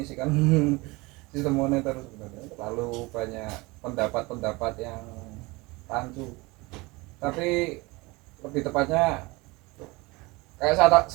sistem moneter sebenarnya, terlalu banyak pendapat-pendapat yang rancu. Tapi lebih tepatnya kayak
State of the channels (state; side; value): quieter; left; 23.8 dB